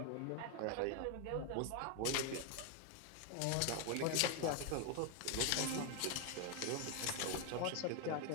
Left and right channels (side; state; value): both; different; correlation 0.01